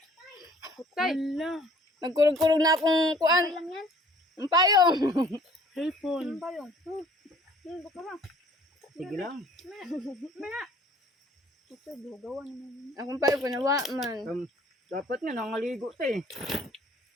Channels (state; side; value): normal; both; correlation 0.55